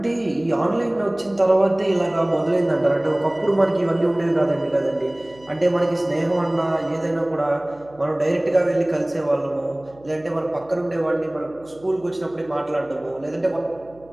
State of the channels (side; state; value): right; noise; hum, 26 dB below the sound